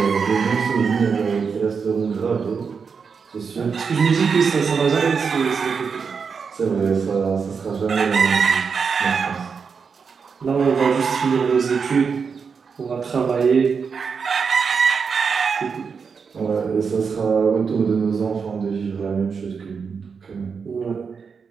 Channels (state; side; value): quieter; left; 5.8 dB